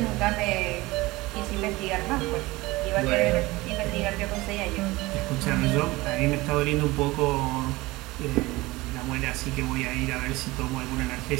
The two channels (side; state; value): left; quieter; 20.7 dB